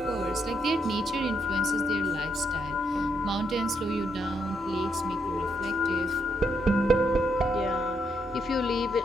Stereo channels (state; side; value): normal; both; correlation 0.78